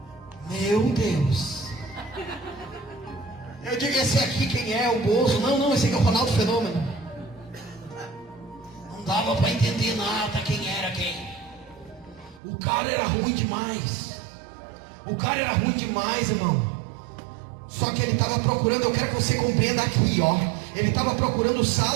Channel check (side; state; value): left; drops out; at 12.4 s